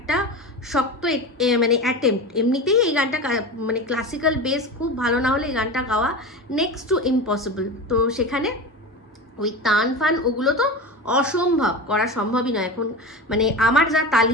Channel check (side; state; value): both; normal; correlation 0.27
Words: শক্ত মানে অ্যাটেম্প্ট। এমনিতেই এই গানটা মানে ক্লাসিক্যাল বেস খুব ভালো না হলে এই গানটা গাওয়া নেক্সট টু ইম্পসিবল। তো সেখানে ওই তান ফান ওগুলো তো অসম্ভব, করা সম্ভবই নয় এখন, মানে আমার যা